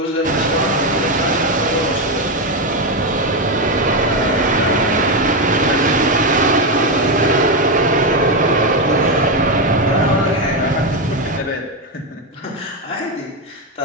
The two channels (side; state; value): both; normal; correlation 0.09